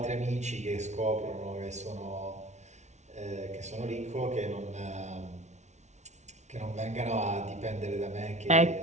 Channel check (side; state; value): left; late; 0.33 ms